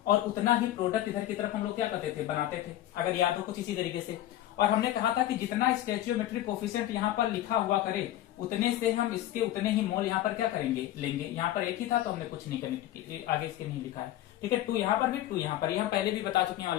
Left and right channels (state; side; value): quieter; right; 13.7 dB